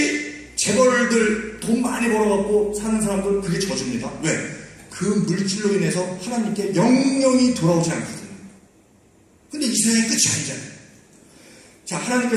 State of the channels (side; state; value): both; identical; correlation 1.00